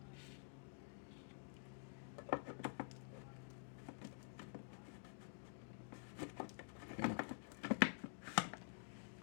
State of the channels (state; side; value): silent; right; digital silence